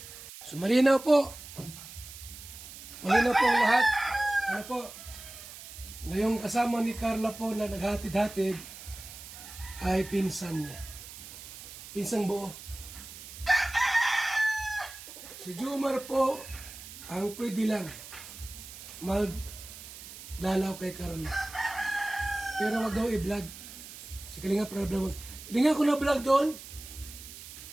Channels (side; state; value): right; noise; hiss, 14 dB below the sound